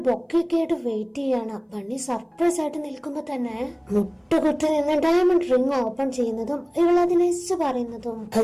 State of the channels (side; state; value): both; identical; correlation 1.00